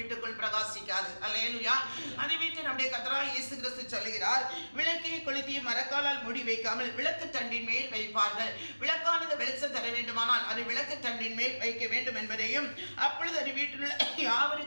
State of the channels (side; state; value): both; inverted; correlation -1.00